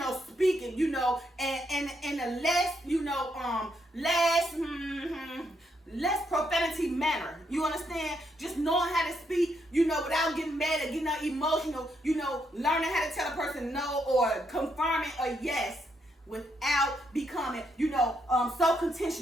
speaking, you know, and a less, you know, less profanity manner. You understand? Just knowing how to speak, you know, without getting mad or getting emotional, you know, learning how to tell a person no or confirming a yes, without becoming, you know, so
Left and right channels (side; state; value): both; normal; correlation 0.77